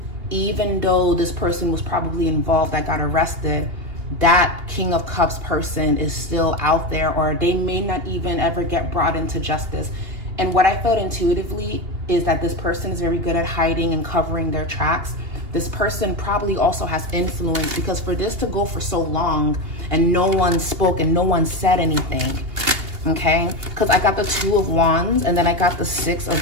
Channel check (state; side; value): late; left; 2.8 ms